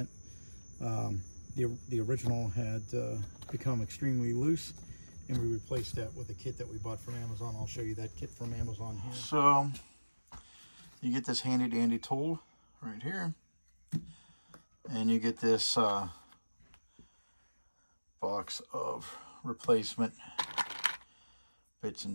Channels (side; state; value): both; inverted; correlation -1.00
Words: The original had become extremely loose, and we replaced that with a kit that we bought from Amazon. I'll show you that kit from Amazon here. So you get this handy dandy tool right here, and you get this box of replacement bits